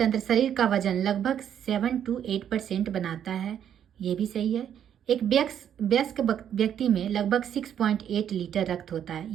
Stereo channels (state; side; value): quieter; left; 9.4 dB